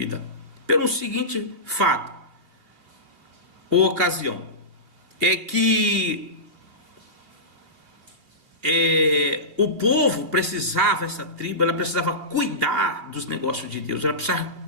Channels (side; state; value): left; late; 2.6 ms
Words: Pelo seguinte fato, ou ocasião, é que o povo precisava, essa tribo, ela precisava cuidar dos negócios de Deus, ela precisava